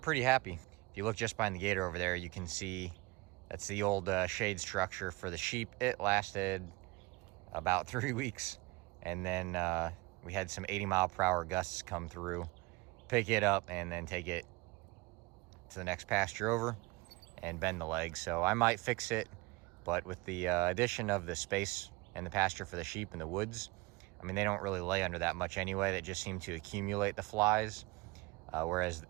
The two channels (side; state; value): left; quieter; 23.1 dB